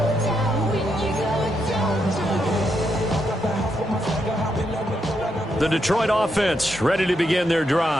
The Detroit offense ready to begin their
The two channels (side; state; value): both; normal; correlation 0.80